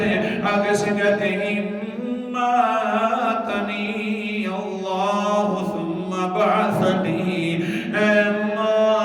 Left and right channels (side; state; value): both; identical; correlation 1.00